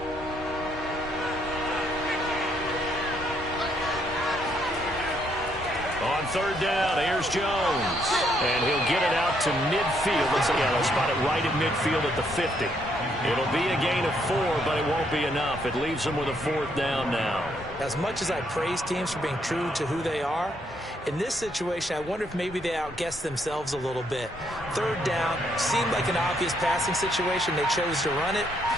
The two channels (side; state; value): both; normal; correlation 0.72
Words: On third down, here's Jones. And he'll get it out to midfield. They'll spot it right at midfield at the 50. It'll be a gain of 4, but it won't be enough. It leaves them with a fourth down now. As much as I praise teams for being true to who they are, in this situation, I wonder if maybe they outguessed themselves a little bit. Third down seemed like an obvious passing situation. They chose to run it